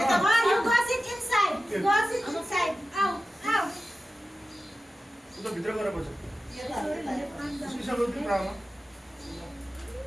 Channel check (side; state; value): both; normal; correlation 0.94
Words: ka, you go sit inside. Go sit inside. Out, out. ito, bitra ka na ba siya? Gusto isa ba ito drama?